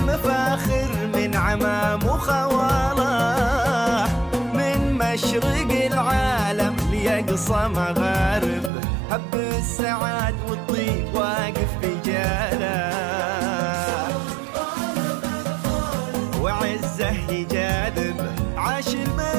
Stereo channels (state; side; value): drops out; left; at 8.7 s